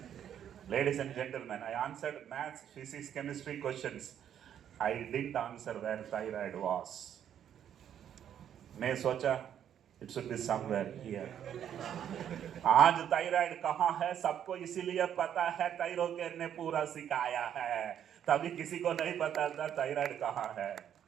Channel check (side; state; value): left; quieter; 9.6 dB